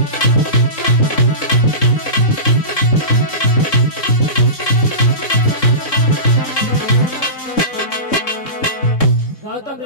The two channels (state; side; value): late; right; 3.7 ms